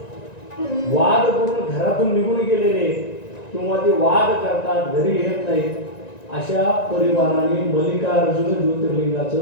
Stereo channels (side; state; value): right; late; 1.9 ms